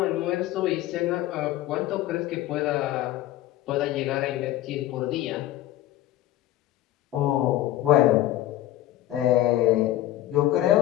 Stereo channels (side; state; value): right; quieter; 14.5 dB